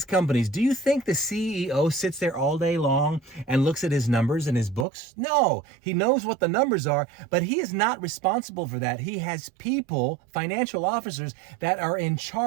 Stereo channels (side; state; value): left; drops out; at 4.9 s